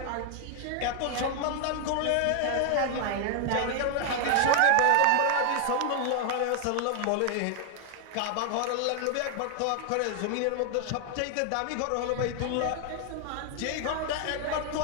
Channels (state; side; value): different; both; correlation 0.00